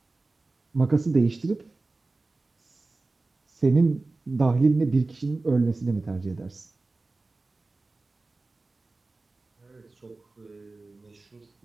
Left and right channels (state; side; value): quieter; left; 3.4 dB